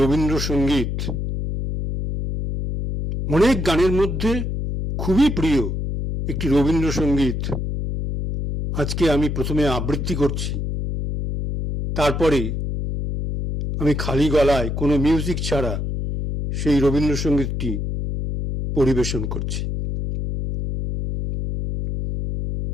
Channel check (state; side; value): noise; left; hum, 3 dB below the sound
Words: অনেক গানের মধ্যে খুবই প্রিয় একটি রবীন্দ্রসঙ্গীত আজকে আমি প্রথমে আবৃত্তি করছি, তারপরে আমি খালি গলায় কোনো মিউজিক ছাড়া সেই রবীন্দ্রসঙ্গীতটি পরিবেশন করছি।